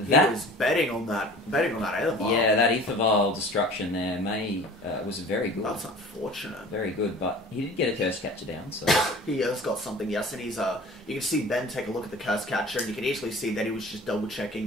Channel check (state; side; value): normal; both; correlation 0.43